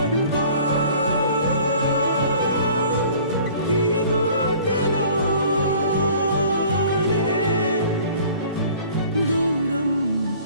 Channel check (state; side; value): inverted; both; correlation -0.50